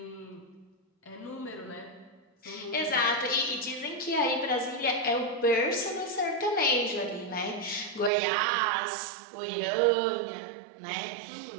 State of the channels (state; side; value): drops out; left; at 8.1 s